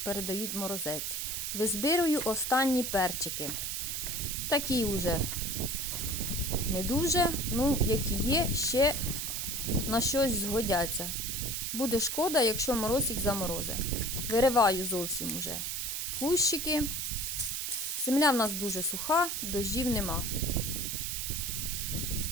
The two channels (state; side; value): noise; right; hiss, 2 dB below the sound